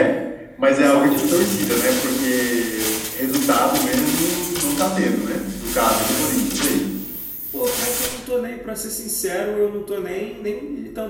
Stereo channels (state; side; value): identical; both; correlation 1.00